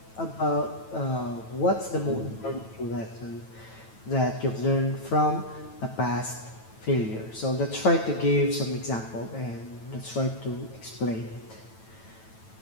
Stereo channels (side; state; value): right; late; 9.1 ms